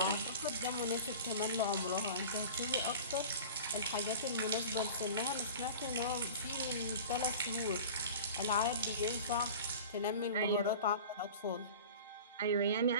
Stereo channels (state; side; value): inverted; both; correlation -0.37